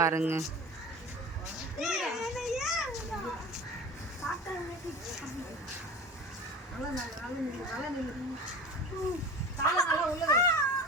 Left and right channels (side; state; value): both; normal; correlation 0.35